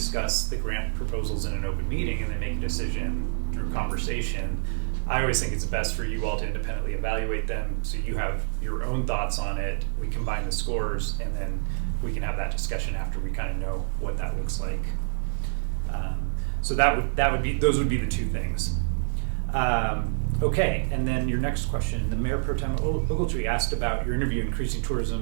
the grant proposals in an open meeting and then make a decision through conversation. I always think it's best for you all to independently evaluate them, so you have your own thoughts on it. We combine the scores, and then we can have that discussion after we kind of know what that looks like. So those would be the two things. Okay, and then your next question, the Mayor Pro Tem Ogletree asked about your interview, increasing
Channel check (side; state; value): left; silent; 60 dB below the other